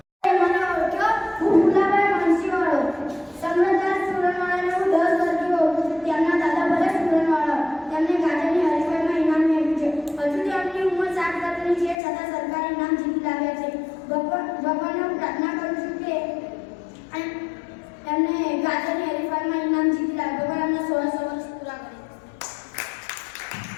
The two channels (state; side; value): drops out; right; at 12.0 s